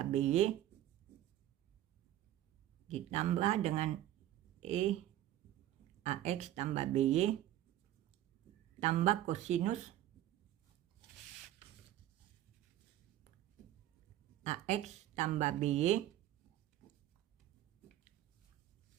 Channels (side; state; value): left; quieter; 13.3 dB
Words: BY ditambah dengan E AX tambah BY tambah kosinus AX tambah BY.